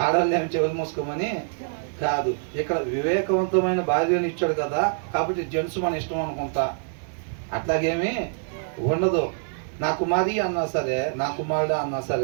ఆడవాళ్ళు ఏమి చెవులు మూసుకోమని కాదు. ఇక్కడ వివేకవంతమైన భార్యని ఇచ్చాడు కదా, కాబట్టి జెంట్స్ మన ఇష్టం అనుకుంటా అట్లాగేమీ ఉండదు. నా కుమారి అన్నా సరే, నా కుమారుడు అన్నా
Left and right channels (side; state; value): left; silent; digital silence